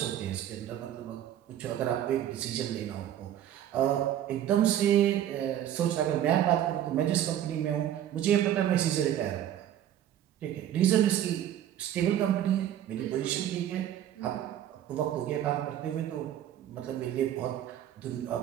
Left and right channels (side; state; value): left; quieter; 11.2 dB